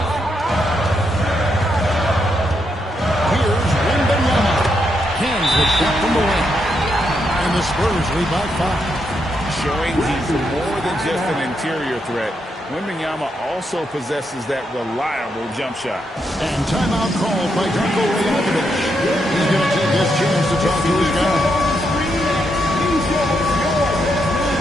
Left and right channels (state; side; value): normal; both; correlation 0.80